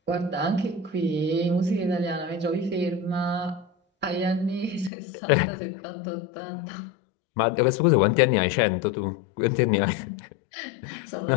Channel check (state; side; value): drops out; right; at 4.9 s